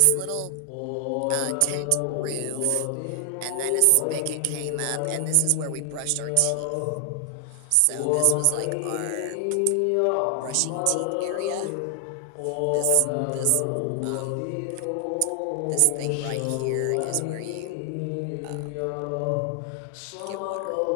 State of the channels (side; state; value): both; different; correlation 0.00